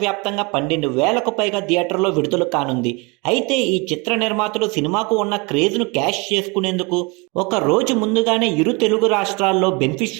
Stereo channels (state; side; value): quieter; left; 28.5 dB